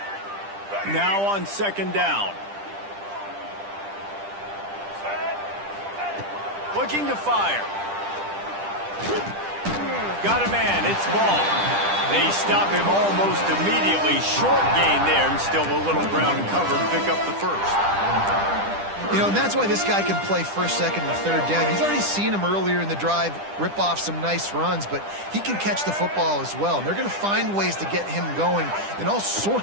Now on 2nd down. Looking to fire. Got a man, it's ball. They stop him almost immediately. Short gain there, and still a little ground and cover to pick up the first. You know, and that's why this guy can play first, second, and third down. You've already seen him earlier in the drive rip off some nice runs, but he can catch the football as well. And they're going to find ways to get him going in all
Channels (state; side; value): late; left; 10 ms